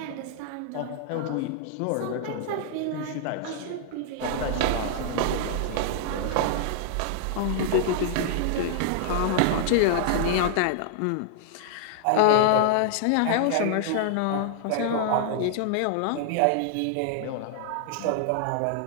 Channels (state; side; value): different; both; correlation -0.01